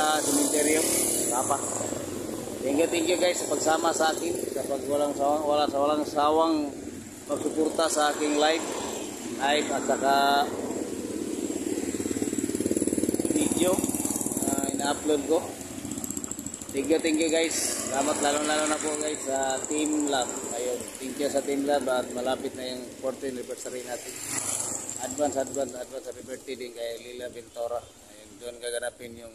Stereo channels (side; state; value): both; identical; correlation 1.00